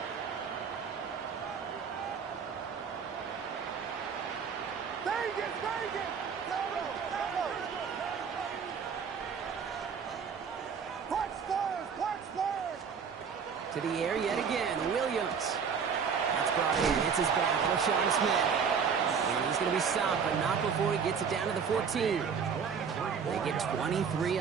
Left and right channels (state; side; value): quieter; left; 6.4 dB